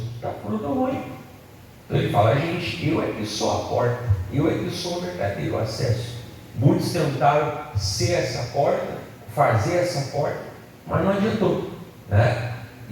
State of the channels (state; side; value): identical; both; correlation 1.00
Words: dá fruto ruim. Então ele fala, gente, eu é que sou a porta, eu é que sou o verdadeiro acesso. Muitos tentaram ser essa porta, fazer essa porta, mas não adiantou, né?